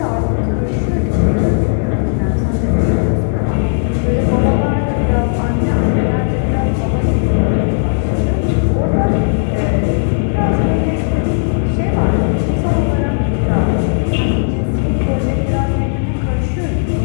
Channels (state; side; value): silent; right; digital silence